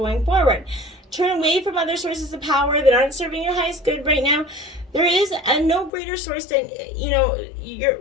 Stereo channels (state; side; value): drops out; right; at 5.9 s